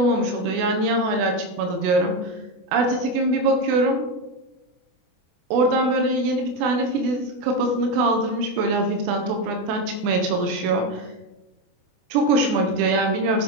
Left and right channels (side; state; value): left; late; 24 ms